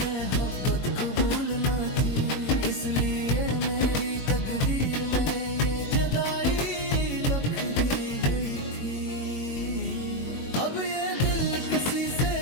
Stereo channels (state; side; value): late; right; 21 ms